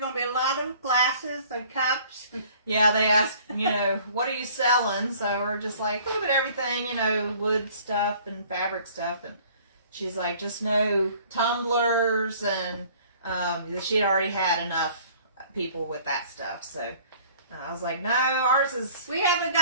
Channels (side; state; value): both; inverted; correlation -0.53